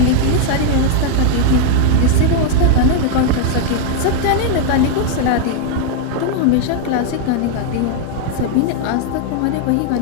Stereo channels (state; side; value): different; both; correlation 0.00